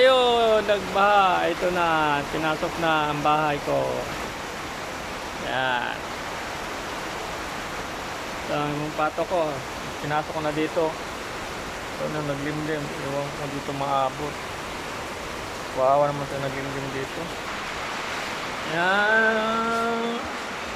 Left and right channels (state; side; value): identical; both; correlation 1.00